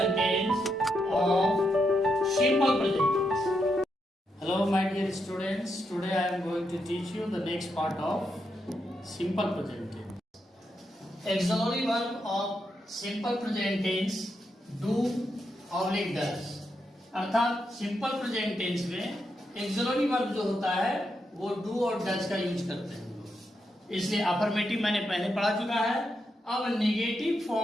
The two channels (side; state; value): both; normal; correlation 0.83